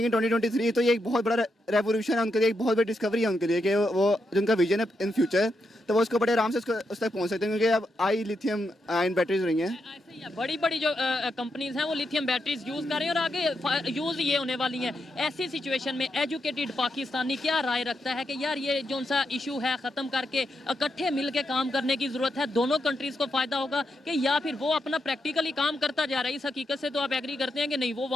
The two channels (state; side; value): normal; both; correlation 0.83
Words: इन 2023 तो ये एक बहुत बड़ा रेवोल्यूशन है उनके लिए, एक बहुत बड़ी डिस्कवरी है उनके लिए कि वो जो उनका विजन है इन फ्यूचर, तो वो उसको बड़े आराम से उस तक पहुंच सकते हैं, क्योंकि अब आई लिथियम आयन बैटरीज रही हैं। ऐसे ही है, बड़ी बड़ी जो कंपनीज हैं वो लिथियम बैटरीज यूज़ कर रही हैं और आगे यूज़ ये होने वाली हैं। ऐसी सिचुएशन में एजुकेटेड पाकिस्तानी क्या राय रखता है कि यार ये जो सा इशू है ख़त्म करके इकट्ठे मिल के काम करने की ज़रूरत है, दोनों कंट्रीज़ को फ़ायदा होगा, कि या फिर वो अपना प्रैक्टिकली काम करता जा रहा है? इस हकीकत से तो आप एग्री करते हैं कि नहीं, वो